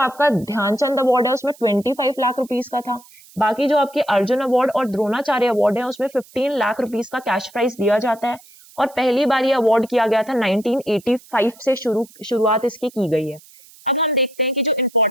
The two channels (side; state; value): right; noise; hiss, 24 dB below the sound